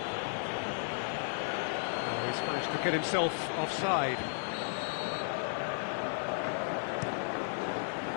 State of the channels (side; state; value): right; silent; 55 dB below the other